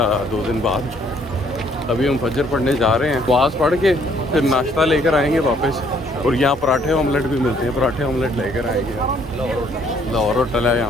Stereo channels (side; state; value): both; normal; correlation 0.64